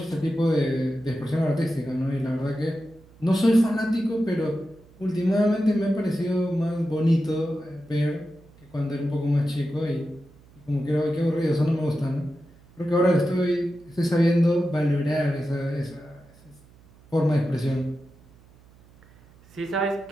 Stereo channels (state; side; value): noise; right; hum, 27 dB below the sound